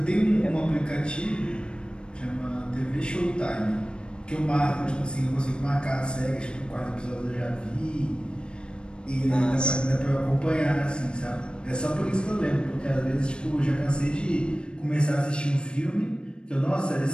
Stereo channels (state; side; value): late; right; 0.054 ms